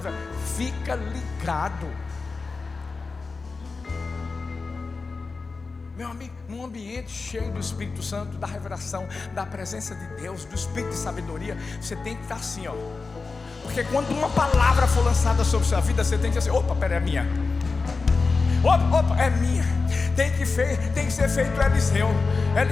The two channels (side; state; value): right; quieter; 4.2 dB